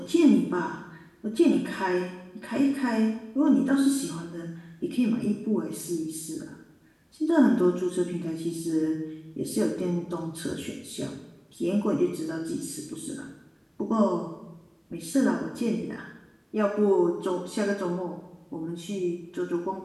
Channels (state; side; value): identical; both; correlation 1.00